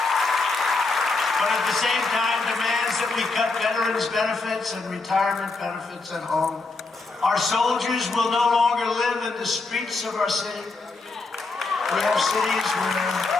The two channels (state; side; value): quieter; right; 3.7 dB